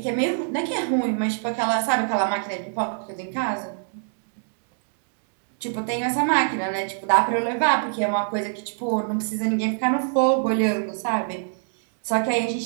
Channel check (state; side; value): silent; left; digital silence